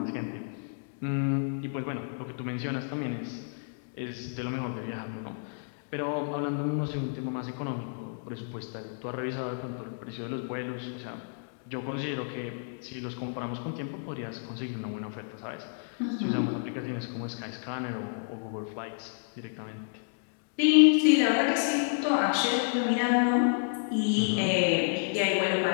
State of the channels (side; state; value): right; silent; digital silence